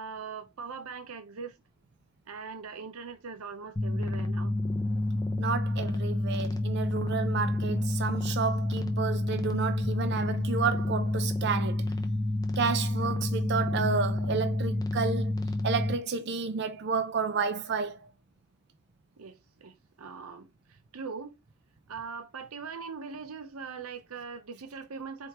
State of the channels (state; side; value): normal; both; correlation 0.50